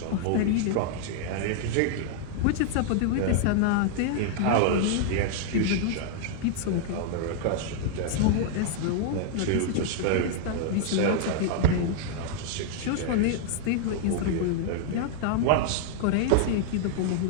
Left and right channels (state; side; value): different; both; correlation 0.00